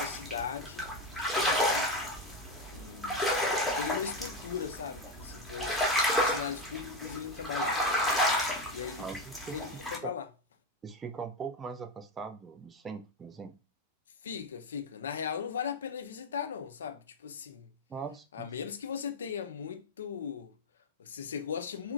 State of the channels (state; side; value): normal; both; correlation 0.11